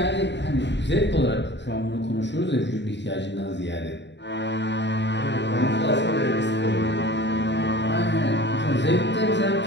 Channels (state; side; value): late; right; 0.52 ms